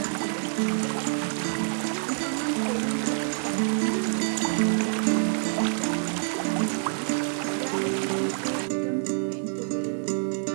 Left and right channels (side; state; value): left; silent; digital silence